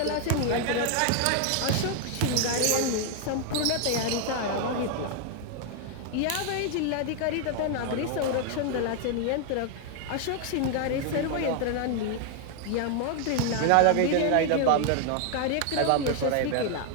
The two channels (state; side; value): different; both; correlation 0.00